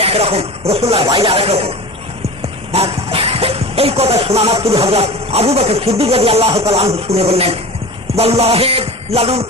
একরকম, রাসূলুল্লাহর বাইরে আরেক রকম। এই কথা শোনা মাত্র হযরত আবু বকর সিদ্দিক রাদিয়াল্লাহু তাআলা আনহু শুনে বললেন, ওয়াল্লাহি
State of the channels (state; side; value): normal; both; correlation 0.34